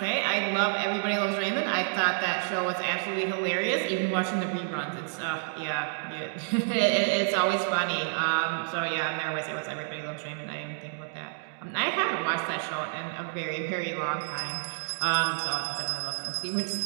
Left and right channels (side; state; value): left; silent; digital silence